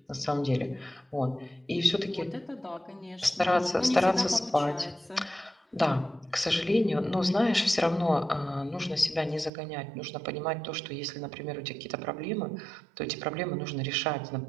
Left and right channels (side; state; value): left; drops out; at 9.5 s